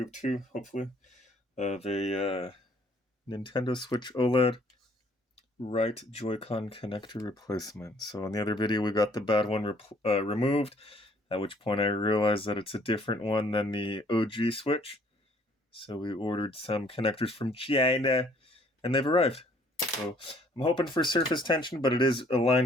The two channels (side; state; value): both; normal; correlation 0.61